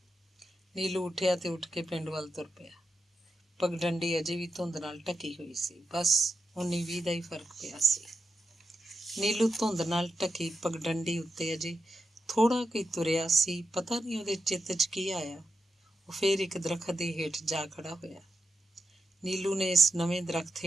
ਨੀਲੂ ਉੱਠਿਆ ਤੇ ਉੱਠ ਕੇ ਪਿੰਡ ਵੱਲ ਤੁਰ ਪਿਆ। ਪਗਡੰਡੀ ਅਜੇ ਵੀ ਧੁੰਦ ਨਾਲ ਢਕੀ ਹੋਈ ਸੀ। ਬਸ 19-20 ਦਾ ਹੀ ਫਰਕ ਪਿਆ ਸੀ। ਨੀਲੂ ਧੁੰਦ ਨਾਲ ਢਕੀ ਪਗਡੰਡੀ ਉੱਤੇ ਅਜੇ ਥੋੜ੍ਹਾ ਕੁ ਤੁਰਿਆ ਸੀ। ਪਤਾ ਨਹੀਂ ਉਹਦੇ ਚਿੱਤ 'ਚ ਕੀ ਆਇਆ। ਉਹ ਫੇਰ ਇੱਕ ਦਰਖਤ ਦੇ ਹੇਠ ਜਾ ਖੜਾ ਹੋਇਆ। ਨੀਲੂ ਨੇ ਇਸ ਨਵੇਂ ਦਰਖਤ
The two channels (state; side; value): normal; both; correlation 0.88